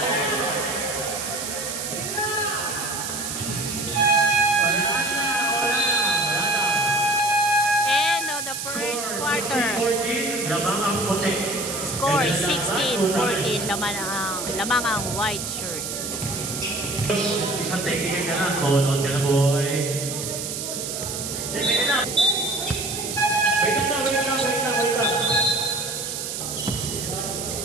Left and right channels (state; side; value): noise; right; hiss, 5 dB below the sound